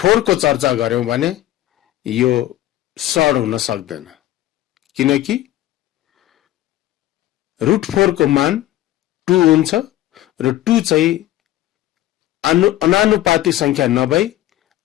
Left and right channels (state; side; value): quieter; right; 14.4 dB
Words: को चर्चा गर्यौं भने यो सड हुन सक्दैन, किनकि √4 को मान 2 हुन्छ र 2 चाहिँ अनानुपातिक संख्या नभई